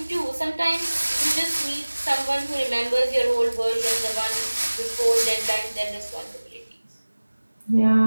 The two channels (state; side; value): inverted; both; correlation -1.00